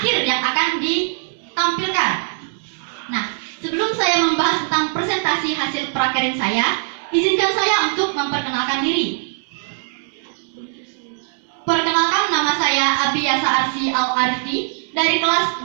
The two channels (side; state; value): left; silent; digital silence